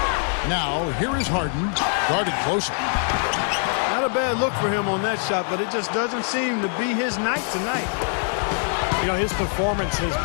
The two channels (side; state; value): right; silent; 56 dB below the other